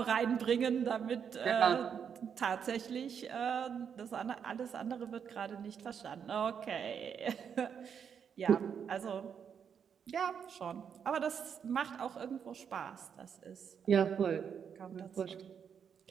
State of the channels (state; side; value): quieter; left; 7.4 dB